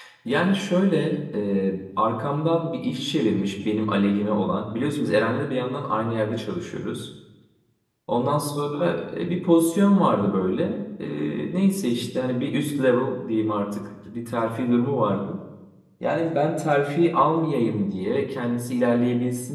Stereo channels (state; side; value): identical; both; correlation 1.00